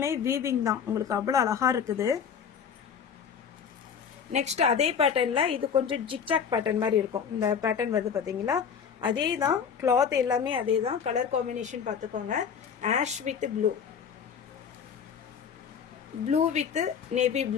வீவிங் தான், உங்களுக்கு அவ்வளோ அழகாக இருக்குது. நெக்ஸ்ட் அதே பேட்டர்னில் இது கொஞ்சம் ஜிக்ஜாக் பேட்டர்ன் மாதிரி இருக்கும். இந்த பேட்டர்ன் வந்து பார்த்தீங்களா அதே தான், கிளாத் எல்லாமே அதே தான். கலர் காம்பினேஷன் பார்த்துக்கோங்க. Ash with blue, blue with navy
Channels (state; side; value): quieter; right; 7.1 dB